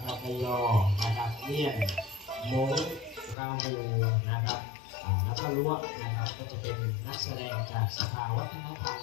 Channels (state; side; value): drops out; right; at 3.4 s